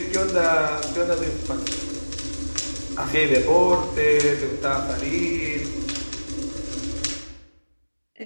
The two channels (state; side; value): inverted; both; correlation -1.00